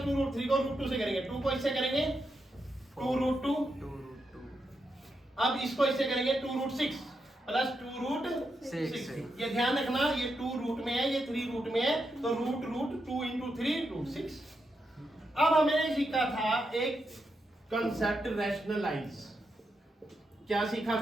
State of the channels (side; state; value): both; normal; correlation 0.84